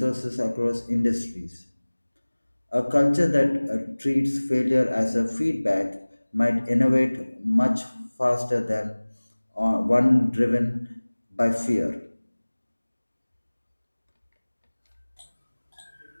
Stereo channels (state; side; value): inverted; both; correlation -1.00